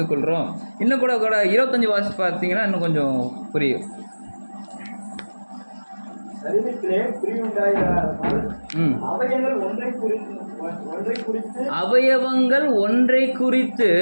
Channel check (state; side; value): inverted; both; correlation -1.00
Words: கொள்கிறோம். இன்னும் கூட 25 வாசி பார்த்தீங்கன்னா இன்னும் கொஞ்சம் புரியும். அவயவங்கள் ஒன்றை குறித்து